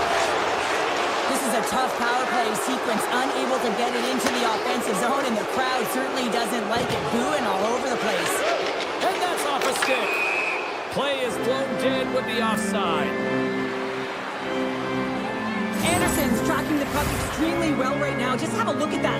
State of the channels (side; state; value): both; identical; correlation 1.00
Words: This is a tough power play sequence, unable to get it into the offensive zone, and the crowd certainly doesn't like it, booing all over the place. And that's off a stick. Play is blown dead with the offside. Anderson's tracking the puck extremely well right now. Just have a look at that